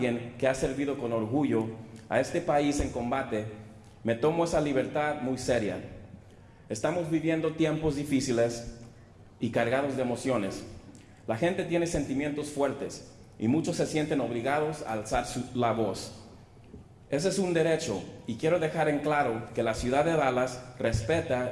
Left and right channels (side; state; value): both; identical; correlation 1.00